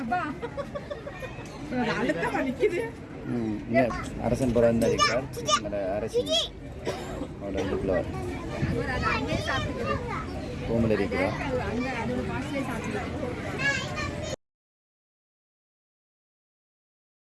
அரசன் புறம் இருக்கிறார். அரசி ரூமில் இருக்கிறார்.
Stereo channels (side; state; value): both; identical; correlation 1.00